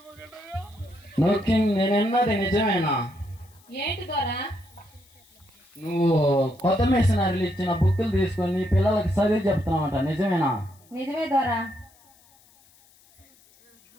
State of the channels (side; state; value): left; noise; hiss, 30 dB below the sound